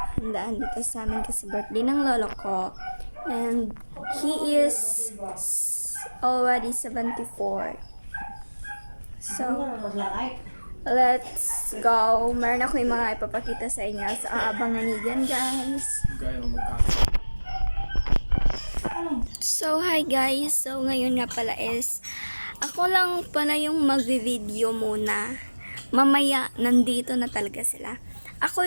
dito sa amin kasi birthday ng lolo ko. And he is already 74. So, let's go. Meron ako yung mga ipapakita sa inyo. So, abangan niyo dyan, guys. So, hi guys. So, ngayon nga pala is, ako lang pala yung magvi-video muna. Mamaya, nandito na talaga sila. Ako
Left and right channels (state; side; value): inverted; both; correlation -1.00